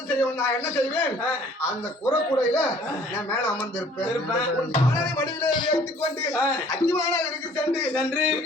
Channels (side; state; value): both; normal; correlation 0.55